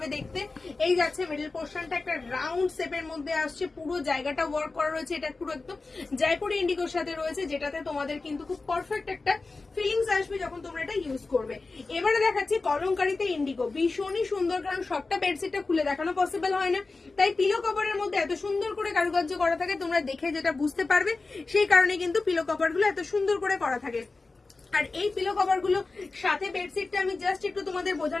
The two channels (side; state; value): right; quieter; 3.7 dB